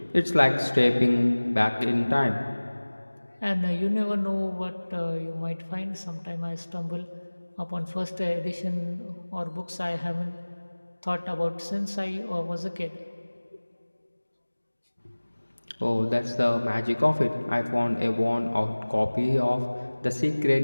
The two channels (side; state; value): both; inverted; correlation -1.00